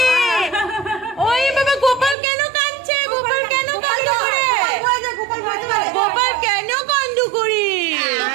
ওই বাবা গোপাল কেন কাঁদছে? গোপাল কেন কান্দ করে? গোপাল কেন কান্দ করে?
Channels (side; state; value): left; drops out; at 2.1 s